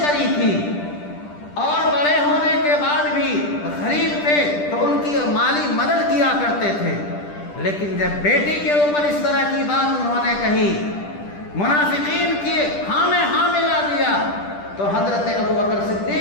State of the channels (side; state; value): right; late; 10 ms